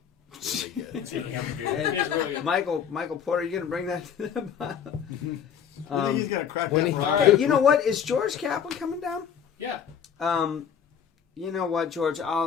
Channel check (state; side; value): quieter; right; 8.0 dB